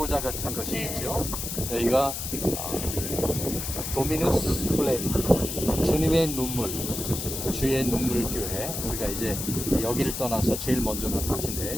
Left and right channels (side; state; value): left; noise; hiss, 5 dB below the sound